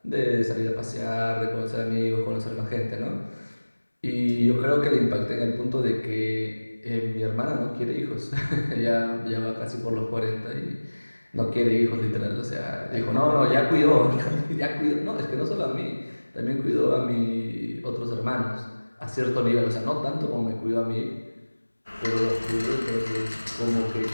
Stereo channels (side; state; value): both; inverted; correlation -1.00